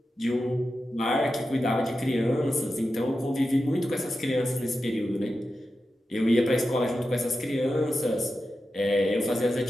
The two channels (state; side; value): normal; both; correlation 0.91